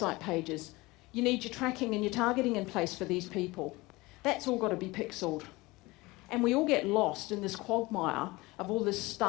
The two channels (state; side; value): quieter; right; 21.9 dB